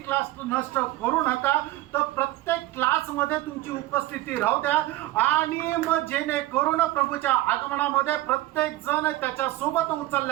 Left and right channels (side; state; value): left; quieter; 16.7 dB